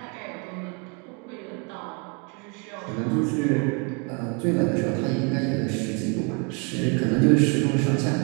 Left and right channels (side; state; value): left; quieter; 33.6 dB